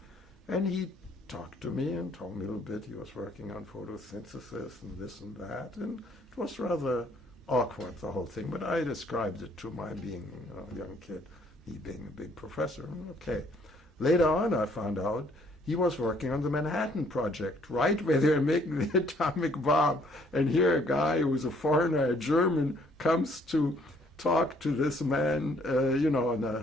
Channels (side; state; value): both; normal; correlation 0.63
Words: And he talked to me and told me a little bit. He was working on photosynthesis and this and that, and it was rather awkward, the whole thing. But I described it to my being a young kid, he being a big professor. Okay. Later on, I found out he was working on the Manhattan Project, right where they're making the atomic bomb. And here a guy who's a foreigner, a German, comes to talk to this man, in